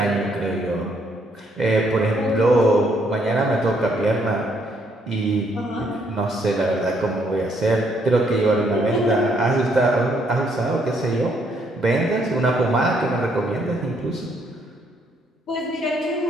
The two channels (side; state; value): both; normal; correlation 0.70